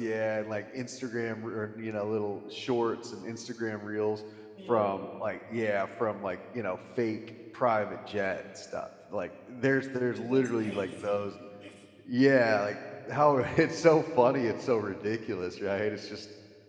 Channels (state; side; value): identical; both; correlation 1.00